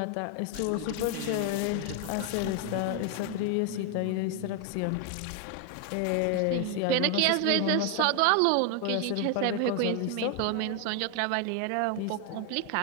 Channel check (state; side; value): different; both; correlation 0.01